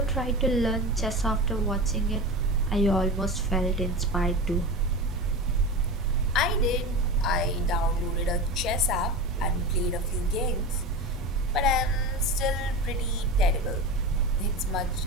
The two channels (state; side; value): normal; both; correlation 0.27